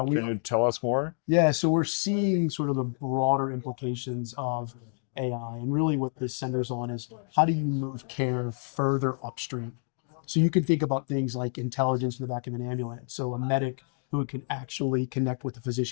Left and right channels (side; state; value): right; silent; digital silence